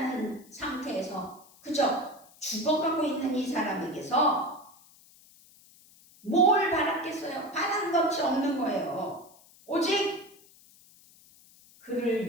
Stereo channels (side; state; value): left; noise; hiss, 26 dB below the sound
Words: 상태에서 그저 죽어가고 있는 이 사람에게서 뭘 바랐겠어요? 바란 것이 없는 거예요. 오직